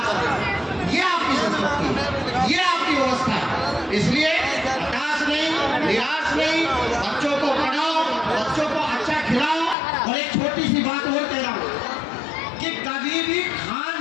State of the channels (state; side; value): drops out; right; at 9.8 s